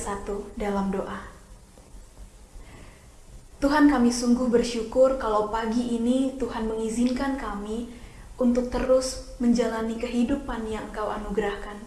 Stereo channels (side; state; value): both; identical; correlation 1.00